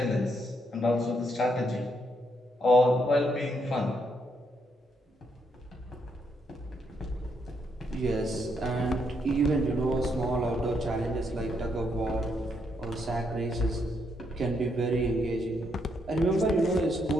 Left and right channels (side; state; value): both; normal; correlation 0.76